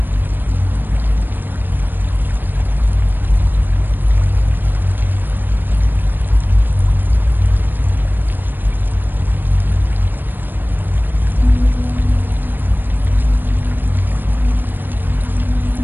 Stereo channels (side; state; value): left; late; 0.093 ms